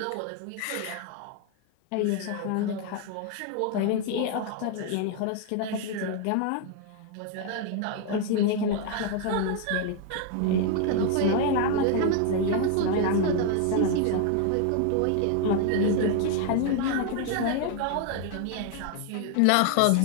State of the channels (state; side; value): different; both; correlation 0.00